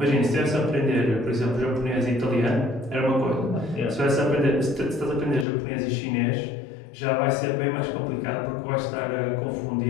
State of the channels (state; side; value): drops out; right; at 5.5 s